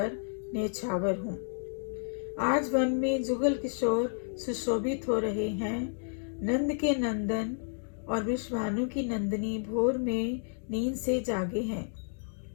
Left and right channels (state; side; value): silent; right; digital silence